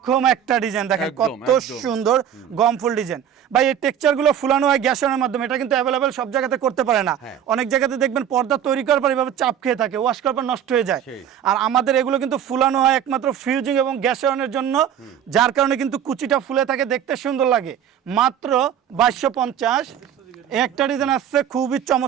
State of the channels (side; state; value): left; quieter; 9.6 dB